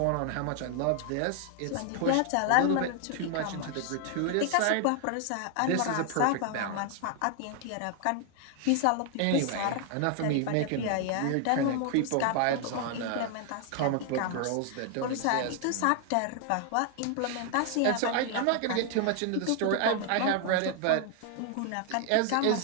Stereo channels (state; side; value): different; both; correlation 0.00